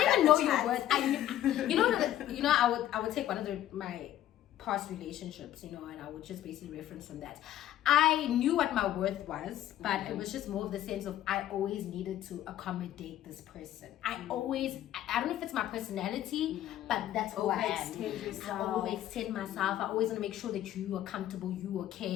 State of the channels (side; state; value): right; quieter; 12.6 dB